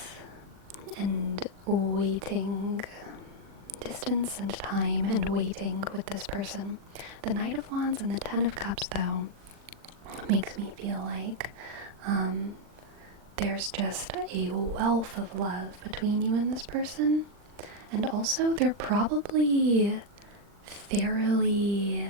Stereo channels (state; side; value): late; left; 40 ms